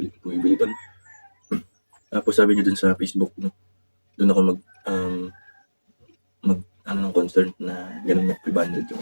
bumibili dun. Tapos sabi niya dun sa Facebook, no? Doon ako ng concern na ganun na 500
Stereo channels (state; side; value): inverted; both; correlation -1.00